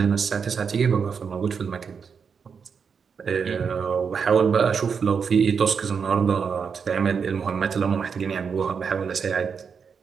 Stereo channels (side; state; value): left; quieter; 6.2 dB